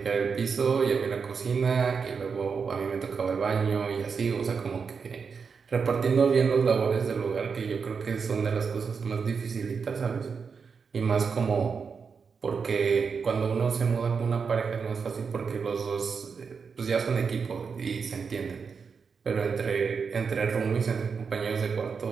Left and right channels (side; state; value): left; quieter; 5.7 dB